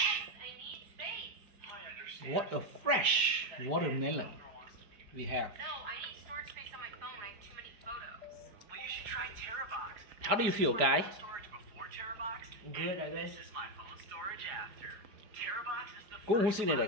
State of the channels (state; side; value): late; left; 4.9 ms